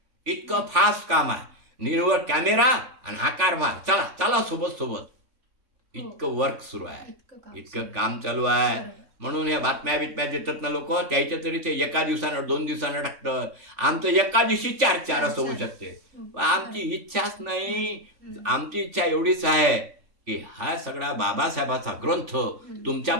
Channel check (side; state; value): left; late; 3.4 ms